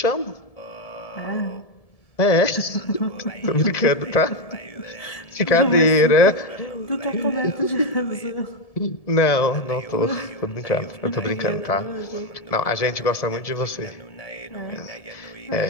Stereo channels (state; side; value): late; right; 1.7 ms